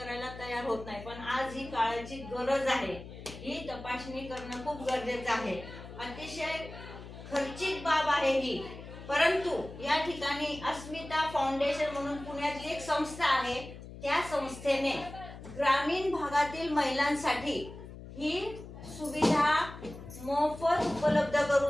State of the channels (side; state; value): left; noise; hum, 14 dB below the sound